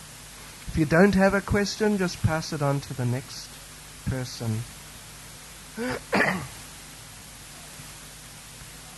you don't have a question, just pass it on to the next person.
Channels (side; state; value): both; identical; correlation 1.00